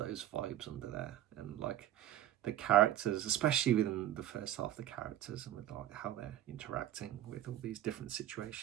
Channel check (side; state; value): left; quieter; 12.6 dB